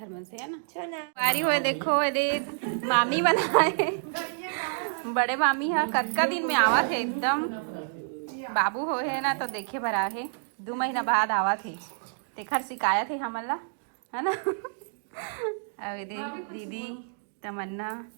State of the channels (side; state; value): left; silent; digital silence